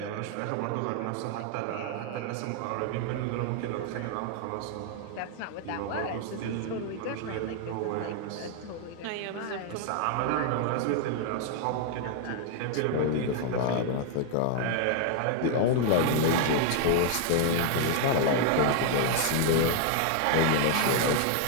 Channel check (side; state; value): both; different; correlation 0.00